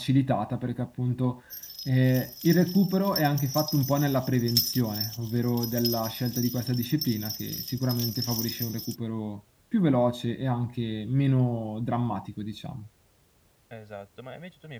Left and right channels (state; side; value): identical; both; correlation 1.00